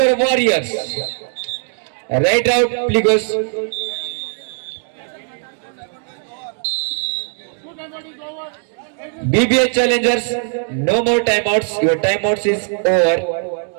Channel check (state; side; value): silent; left; 58 dB below the other